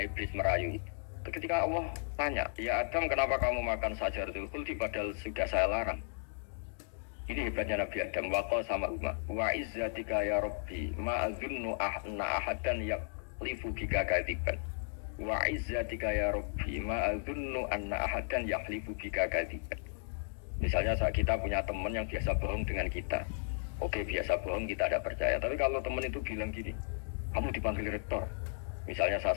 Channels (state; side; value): silent; right; digital silence